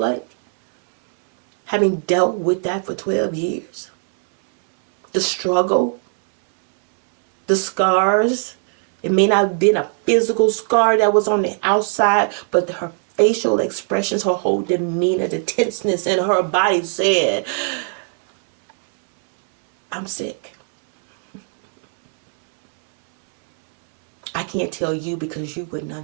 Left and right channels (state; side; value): silent; left; 58 dB below the other